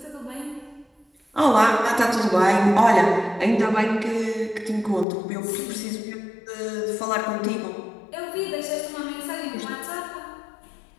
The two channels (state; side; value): drops out; right; at 5.1 s